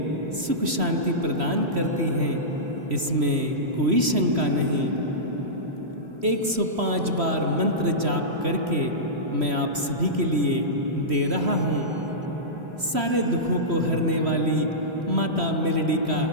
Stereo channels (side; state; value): left; late; 3.1 ms